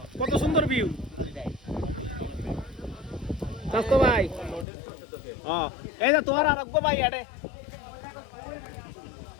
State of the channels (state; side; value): drops out; right; at 4.7 s